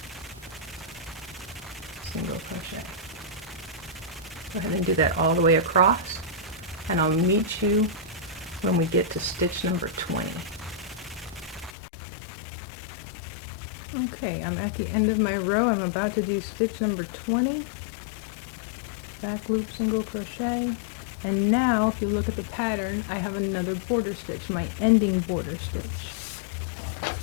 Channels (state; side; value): drops out; right; at 11.7 s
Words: single crochet. Go ahead and do that all the way across, and I'll meet you when we get to stitch number 20. Okay, I'm at the end of my row. I'm about to do stitch number 20. Back loop, single crochet. And now, if you look at the pattern, I have another border stitch, my ending border stitch.